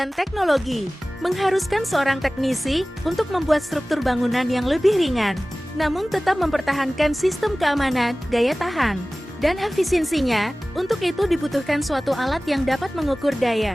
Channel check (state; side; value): normal; both; correlation 0.98